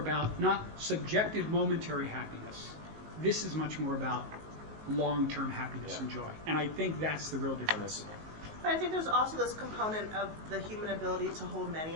not subjective momentary happiness. This is much more about long-term happiness and joy. And I think that's the real difference. But I think there's also this component of the human ability to hold many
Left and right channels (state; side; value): late; left; 19 ms